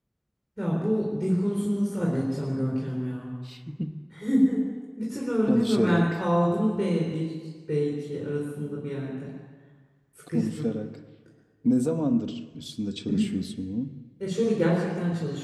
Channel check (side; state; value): both; identical; correlation 1.00